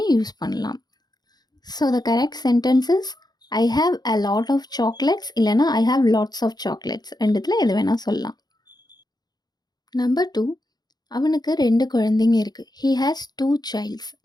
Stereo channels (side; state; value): right; late; 0.20 ms